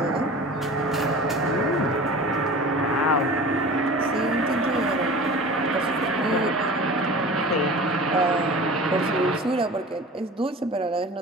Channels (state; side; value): normal; both; correlation 0.38